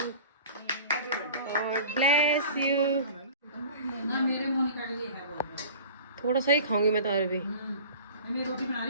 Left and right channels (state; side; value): inverted; both; correlation -0.42